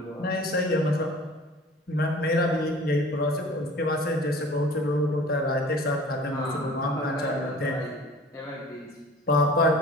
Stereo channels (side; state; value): both; normal; correlation 0.45